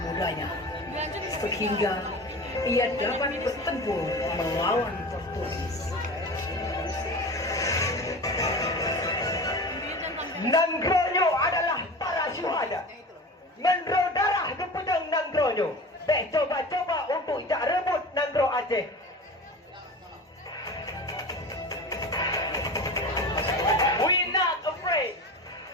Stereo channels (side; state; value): both; normal; correlation 0.33